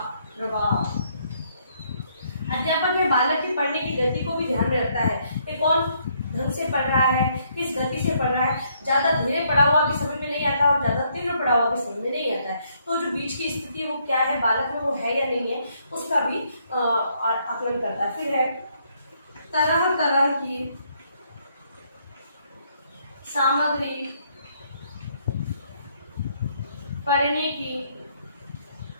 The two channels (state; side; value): inverted; both; correlation -0.70